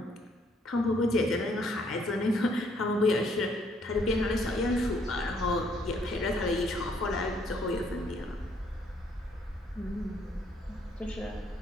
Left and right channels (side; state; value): both; normal; correlation 0.67